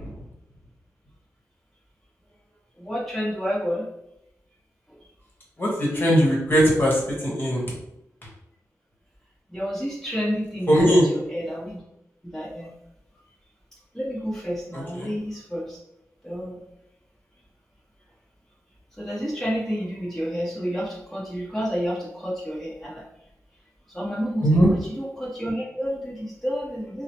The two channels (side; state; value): both; normal; correlation 0.87